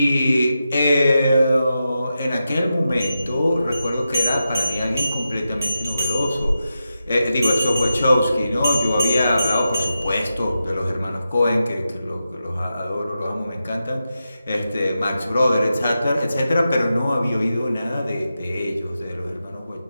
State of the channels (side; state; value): both; inverted; correlation -0.89